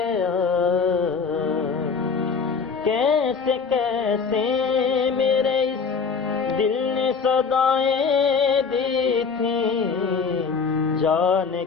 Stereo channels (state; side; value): quieter; right; 5.5 dB